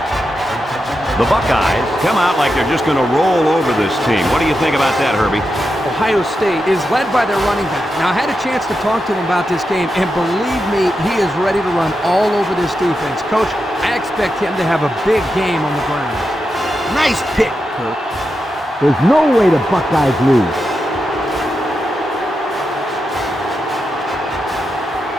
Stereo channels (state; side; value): normal; both; correlation 0.88